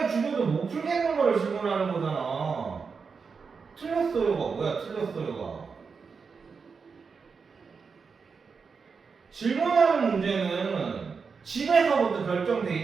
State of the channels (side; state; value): left; quieter; 5.4 dB